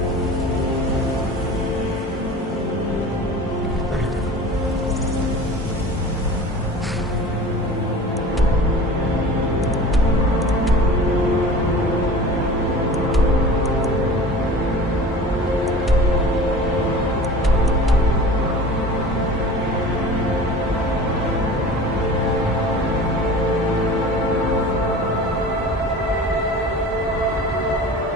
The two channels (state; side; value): normal; both; correlation 0.39